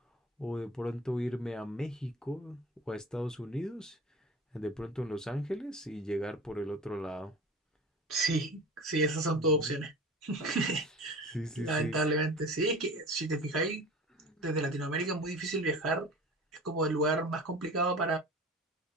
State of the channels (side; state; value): both; normal; correlation 0.37